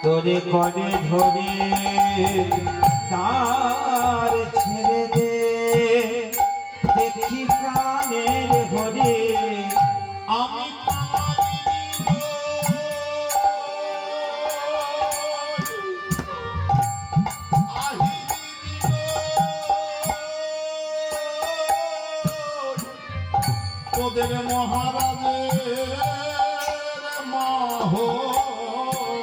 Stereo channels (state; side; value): identical; both; correlation 1.00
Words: তোরে করে ধরে তার ছেড়ে দে। দেখি প্রাণের হরে আমি তোদের মহারাজের মাহ